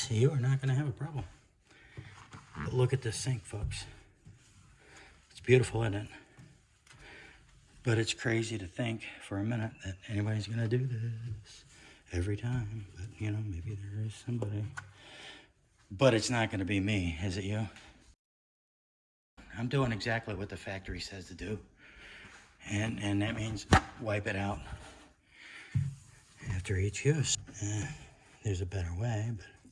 you are not going to have a problem. But look at this sink, folks. It's beautiful, isn't it? But it's crazy to think for a minute that anybody's going to do this every time. But, you know, maybe there is somebody. But it's not going to be me, is it you? I'm doing exactly what the factory says to do. And that means wipe it out after each use. There's a better way, but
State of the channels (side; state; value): both; identical; correlation 1.00